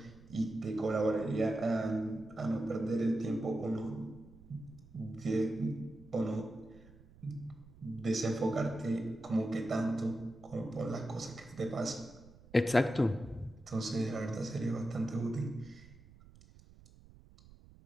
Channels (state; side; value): noise; right; rumble, 22 dB below the sound